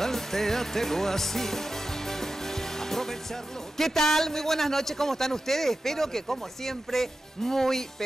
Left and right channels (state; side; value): normal; both; correlation 0.93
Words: así, aprovecharlo. ¿Qué tal? Muy buenas noches, ¿cómo están ustedes? Espero que como siempre, muy,